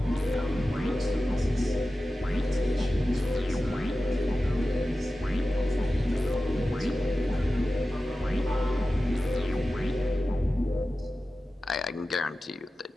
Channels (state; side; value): normal; both; correlation 0.94